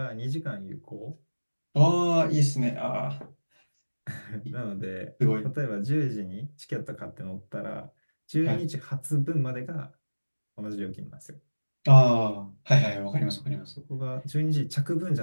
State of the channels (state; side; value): inverted; both; correlation -1.00